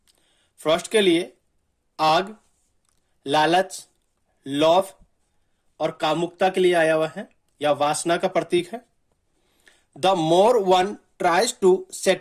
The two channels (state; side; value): identical; both; correlation 1.00